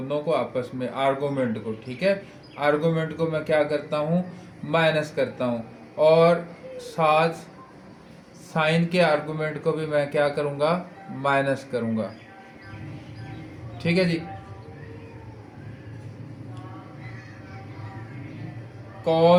को आपस में, आर्गूमेंट को। ठीक है, आर्गूमेंट को मैं क्या करता हूँ, माइनस करता हूँ, और साथ साइन के आर्गूमेंट को भी मैं क्या करूँगा, माइनस करूँगा। ठीक है जी,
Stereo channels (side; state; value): both; identical; correlation 1.00